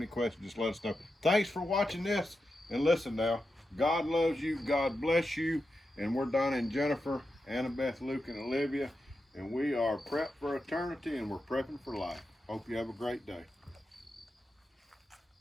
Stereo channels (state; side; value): normal; both; correlation 0.89